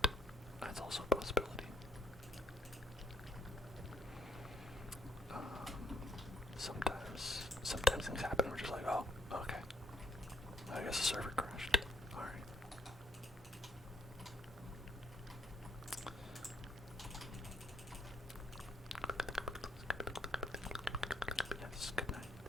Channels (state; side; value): normal; both; correlation 0.70